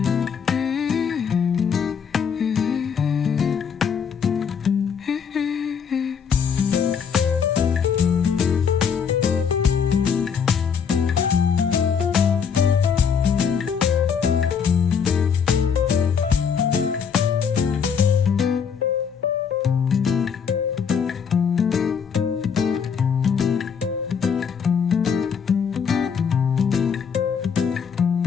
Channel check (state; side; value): quieter; right; 6.8 dB